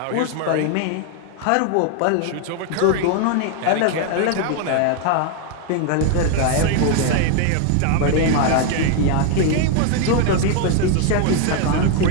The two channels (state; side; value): different; both; correlation 0.00